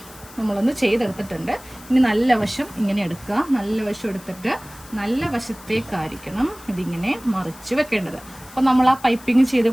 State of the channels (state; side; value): noise; left; hiss, 20 dB below the sound